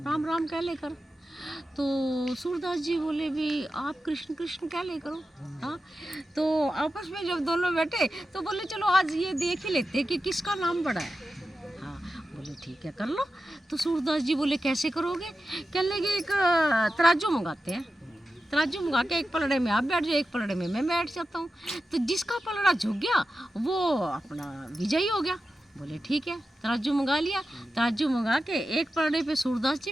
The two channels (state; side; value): normal; both; correlation 0.92